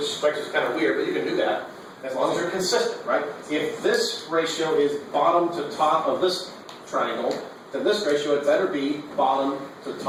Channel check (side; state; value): both; identical; correlation 1.00